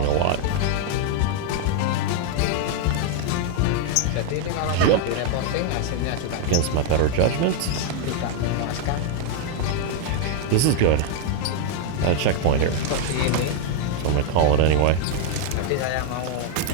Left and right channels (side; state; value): both; different; correlation 0.00